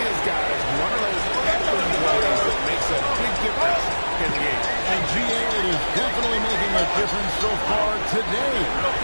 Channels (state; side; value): inverted; both; correlation -1.00